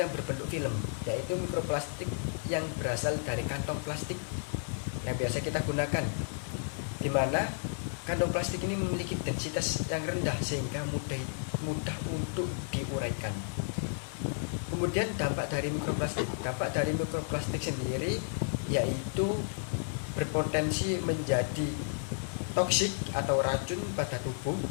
berbentuk film, yaitu mikroplastik yang berasal dari kantong plastik yang biasa kita gunakan, di mana kantong plastik ini memiliki densitas yang rendah sehingga mudah untuk diuraikan. Kemudian dampak dari mikroplastik sendiri yaitu berpotensi menjadi toksik atau racun pada tubuh,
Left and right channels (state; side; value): silent; right; digital silence